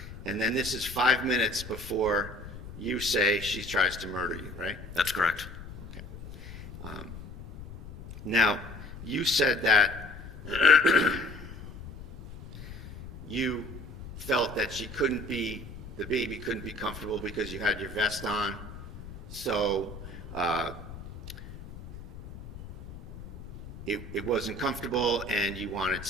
And then this is 5 minutes before you say she tries to murder you, right? That's correct. Okay. Now, you said that you felt that the baby couldn't be comfortable because you had your vest on. So it wasn't comfortable, and you wanted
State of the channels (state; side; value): noise; left; rumble, 13 dB below the sound